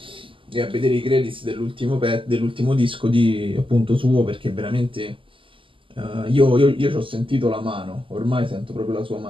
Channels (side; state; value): left; late; 0.25 ms